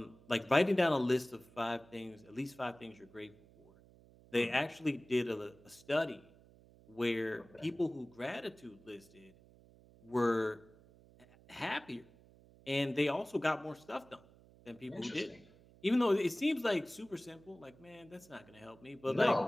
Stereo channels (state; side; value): noise; right; hum, 25 dB below the sound